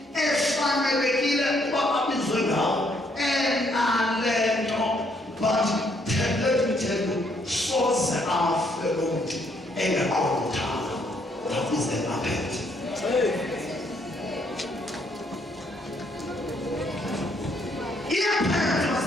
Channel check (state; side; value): normal; both; correlation 0.70